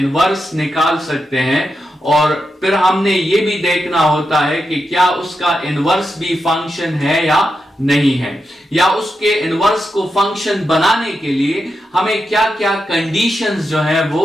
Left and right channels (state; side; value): normal; both; correlation 0.87